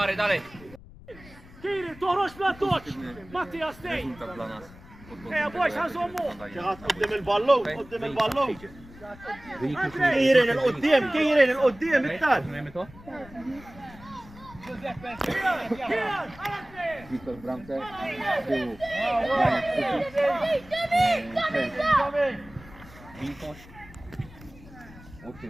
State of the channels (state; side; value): noise; left; rumble, 20 dB below the sound